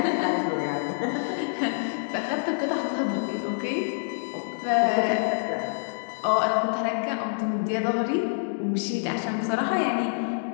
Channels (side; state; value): right; silent; digital silence